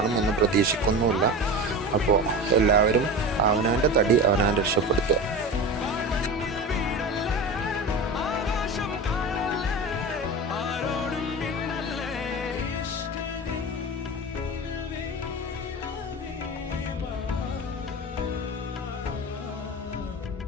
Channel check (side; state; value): both; normal; correlation 0.29